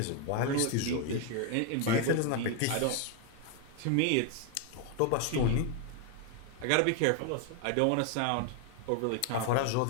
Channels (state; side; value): different; both; correlation 0.01